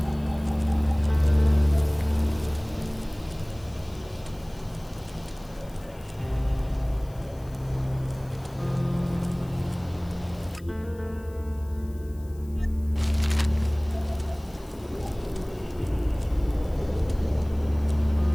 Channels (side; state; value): left; noise; hiss, 26 dB below the sound